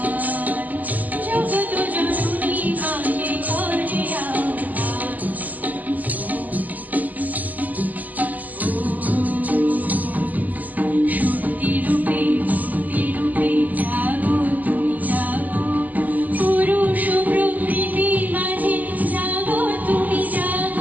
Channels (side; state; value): left; late; 0.080 ms